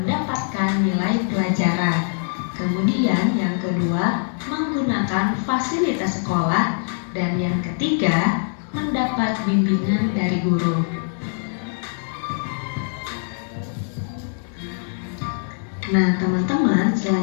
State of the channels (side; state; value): right; silent; digital silence